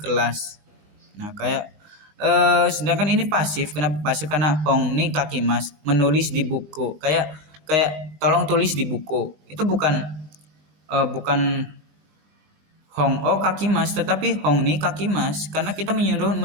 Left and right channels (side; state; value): left; late; 19 ms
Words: Nah kayak sedangkan ini pasif. Kenapa pasif? Karena hongni kakimas, menulis di buku, kayak tolong tulis di buku. Itu bukan hong o kakimas, tetapi hongni kakimas, karena kita menyuruh